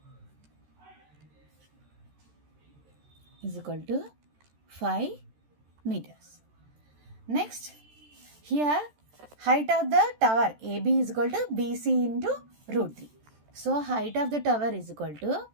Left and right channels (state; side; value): late; left; 13 ms